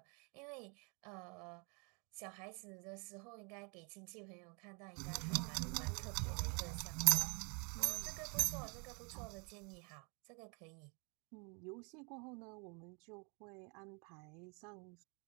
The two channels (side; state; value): left; quieter; 33.9 dB